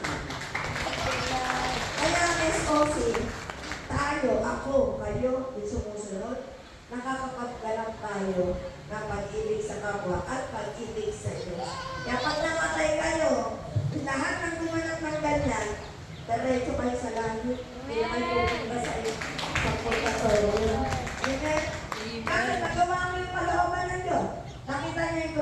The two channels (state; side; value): identical; both; correlation 1.00